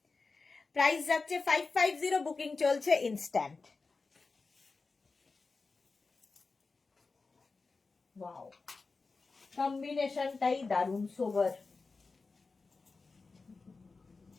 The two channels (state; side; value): quieter; right; 4.1 dB